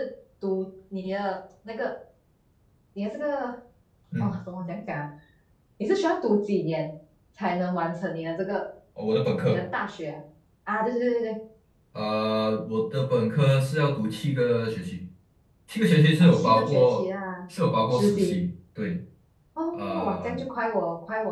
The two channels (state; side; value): identical; both; correlation 1.00